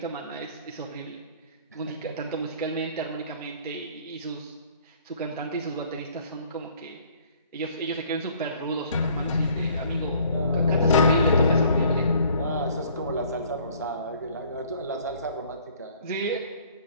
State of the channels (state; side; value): inverted; both; correlation -0.56